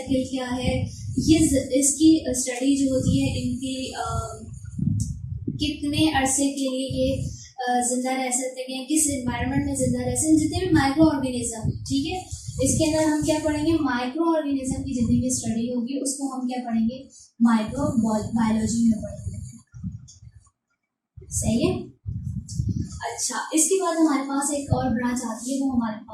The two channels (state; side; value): identical; both; correlation 1.00